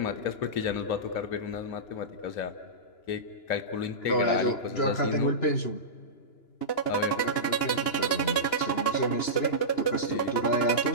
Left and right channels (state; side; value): late; right; 2.9 ms